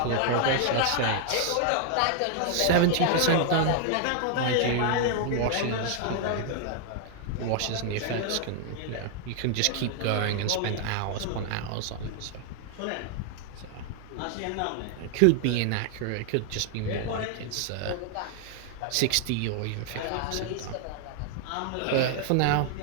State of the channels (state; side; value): different; both; correlation 0.00